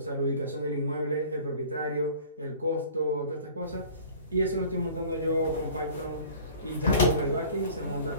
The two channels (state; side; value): inverted; both; correlation -0.46